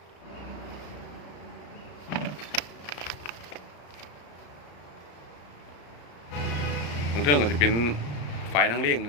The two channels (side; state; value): right; late; 34 ms